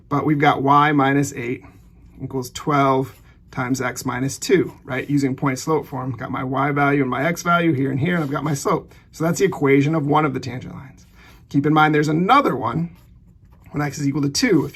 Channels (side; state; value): both; identical; correlation 1.00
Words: but we've got y minus 8 equals 12 times x minus 2, right? Using point slope form, got my y value and my x value here and here, and I've got my slope. So that's the equation of one of the tangent lines. Keep in mind there's another one when x is equal to 2.